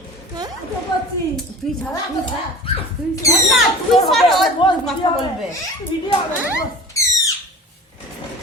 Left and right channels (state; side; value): normal; both; correlation 0.39